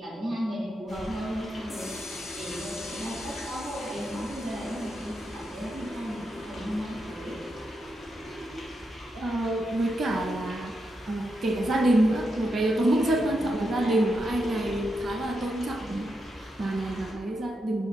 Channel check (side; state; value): both; normal; correlation 0.84